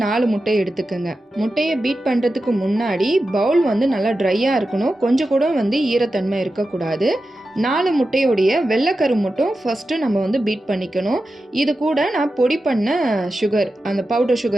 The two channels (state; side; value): normal; both; correlation 0.92